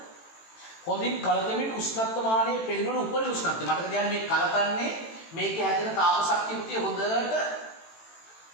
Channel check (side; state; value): right; late; 18 ms